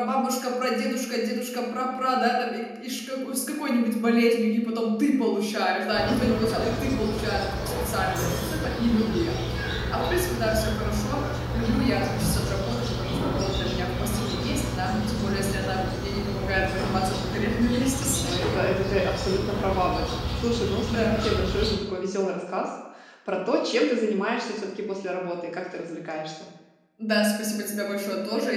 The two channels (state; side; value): identical; both; correlation 1.00